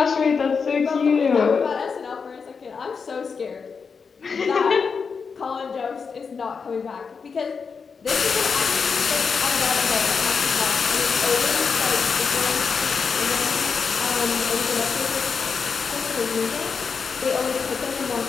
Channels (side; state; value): right; quieter; 5.5 dB